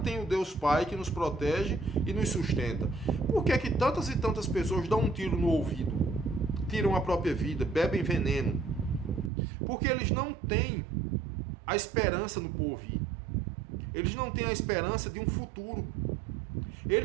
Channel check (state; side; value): drops out; left; at 9.3 s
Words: tem o Deus Pai que nos protege e nos sustenta. Por que é que tantas e tantas pessoas dão um tiro no ouvido, tiram a própria vida, bebem veneno? Porque eles não têm a esperança no porvir. Eles não têm a esperança de um futuro.